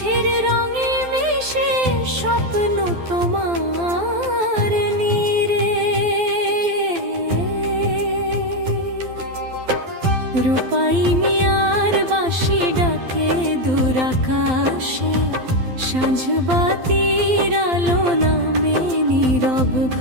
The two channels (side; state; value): left; late; 12 ms